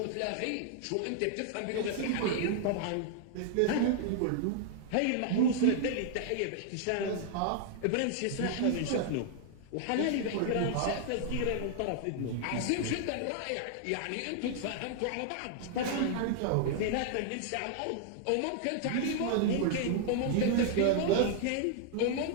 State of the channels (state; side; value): different; both; correlation 0.00